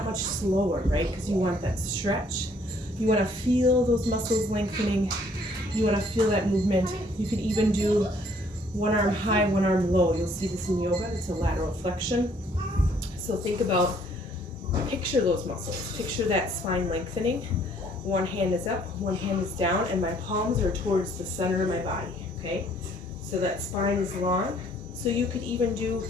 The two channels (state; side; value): normal; both; correlation 0.62